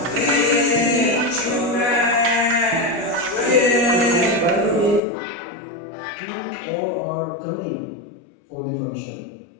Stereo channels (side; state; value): right; drops out; at 5.0 s